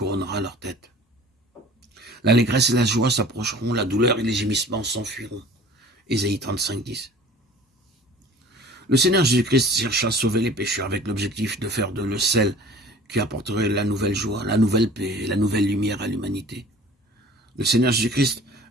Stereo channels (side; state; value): both; normal; correlation 0.46